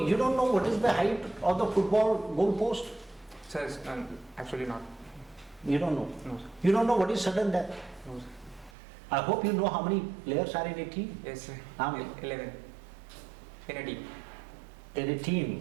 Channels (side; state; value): left; drops out; at 8.7 s